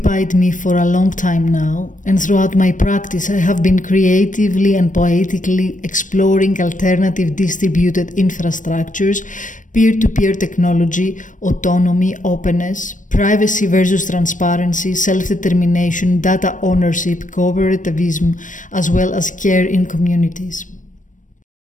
me for a long time now, and throughout my practice I have been creatively and poetically exploring alternative distributed infrastructures, peer-to-peer technology, autonomy, openness, privacy versus transparency, self-determination, data ownership, cooperativism, as well as care in communities.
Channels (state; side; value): late; right; 0.37 ms